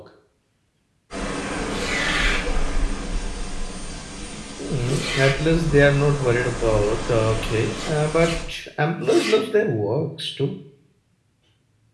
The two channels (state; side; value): identical; both; correlation 1.00